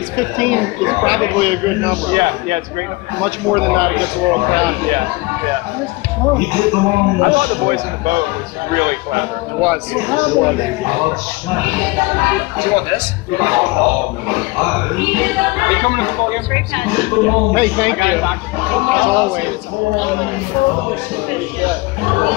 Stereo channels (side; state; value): right; quieter; 22.9 dB